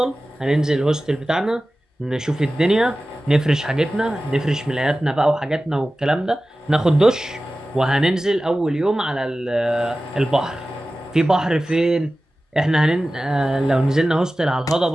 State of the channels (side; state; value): both; normal; correlation 0.96